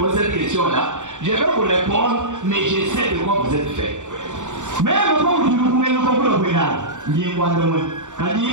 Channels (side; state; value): left; late; 0.85 ms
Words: cette question-là, je vais vous répondre, mais je sais de quoi vous êtes fait.